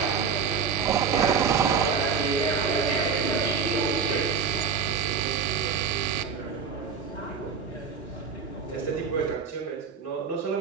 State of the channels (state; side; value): quieter; left; 5.8 dB